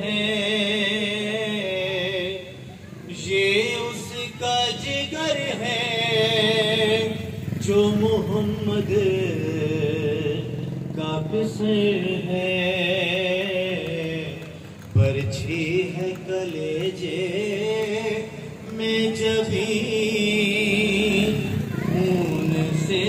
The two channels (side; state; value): both; identical; correlation 1.00